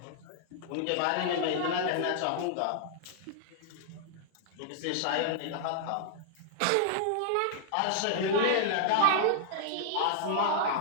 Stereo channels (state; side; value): different; both; correlation -0.01